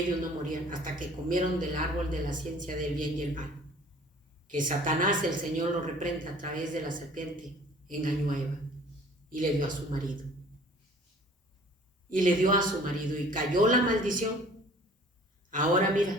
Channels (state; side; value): normal; both; correlation 0.51